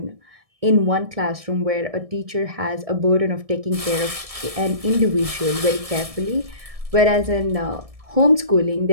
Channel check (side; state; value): left; late; 1.7 ms